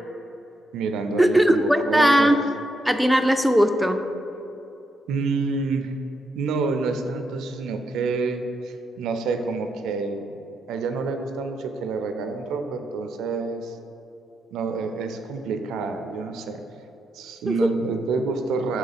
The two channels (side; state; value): both; normal; correlation 0.82